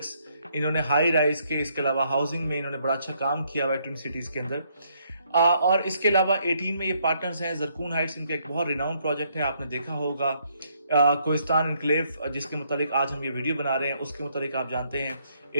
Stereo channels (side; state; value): both; inverted; correlation -0.71